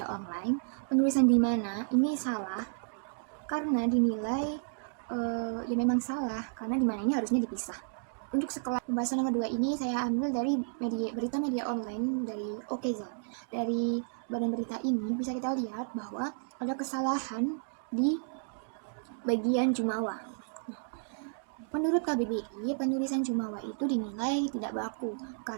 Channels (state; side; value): silent; left; digital silence